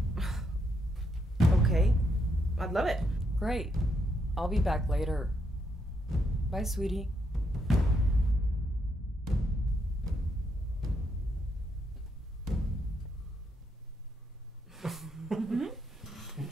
Okay. I'd love it. Great. I'll be back later. Bye, sweetie.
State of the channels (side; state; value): both; normal; correlation 0.78